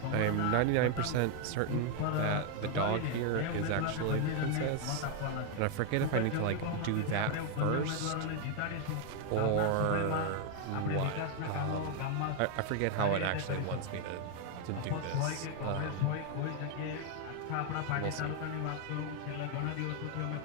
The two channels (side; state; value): both; different; correlation 0.00